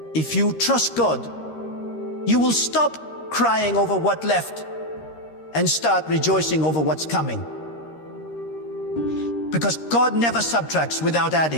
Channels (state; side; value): late; right; 13 ms